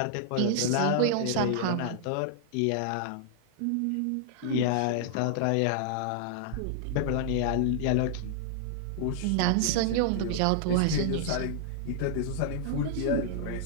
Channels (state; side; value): different; both; correlation -0.01